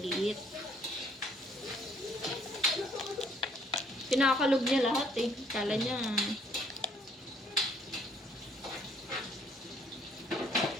Pinakalog niya lahat eh. Kala niya.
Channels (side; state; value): both; normal; correlation 0.63